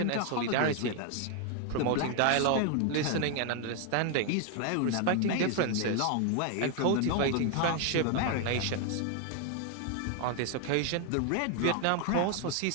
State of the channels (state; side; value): different; both; correlation 0.01